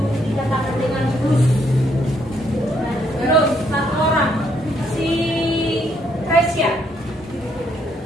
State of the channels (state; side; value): normal; both; correlation 0.72